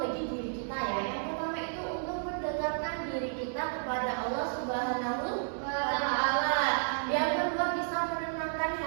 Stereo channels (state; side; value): silent; left; digital silence